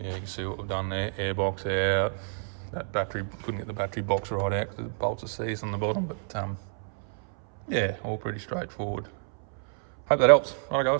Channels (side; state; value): left; silent; 59 dB below the other